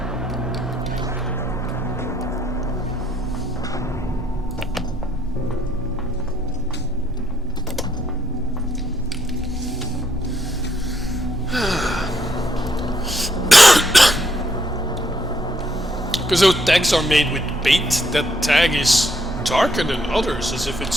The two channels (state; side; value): normal; both; correlation 0.73